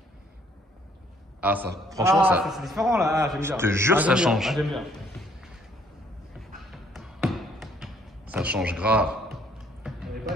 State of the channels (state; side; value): normal; both; correlation 0.64